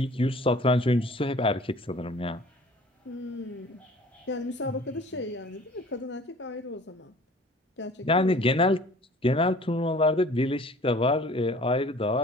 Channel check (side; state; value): both; normal; correlation 0.49